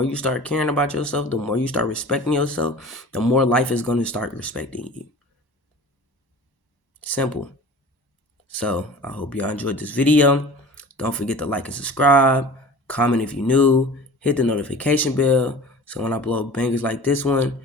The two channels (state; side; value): late; right; 1.1 ms